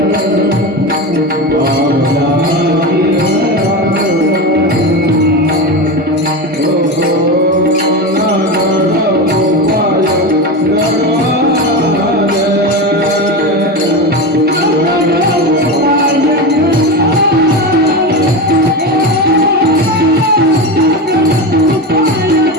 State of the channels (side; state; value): both; normal; correlation 0.21